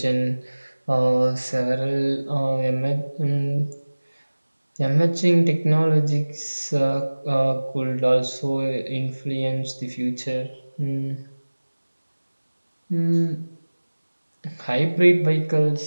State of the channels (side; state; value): both; inverted; correlation -1.00